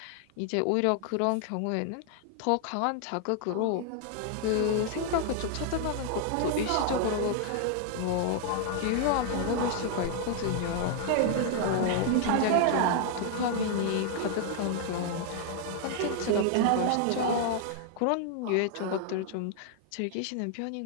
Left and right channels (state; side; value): different; both; correlation 0.00